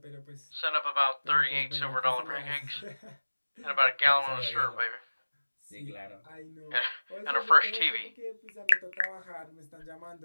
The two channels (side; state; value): both; inverted; correlation -1.00